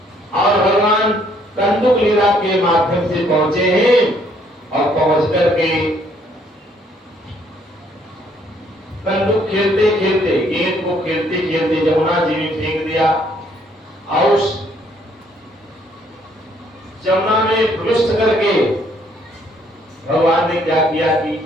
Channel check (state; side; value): normal; both; correlation 0.66